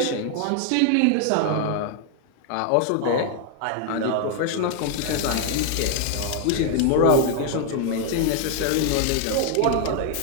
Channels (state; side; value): different; both; correlation 0.00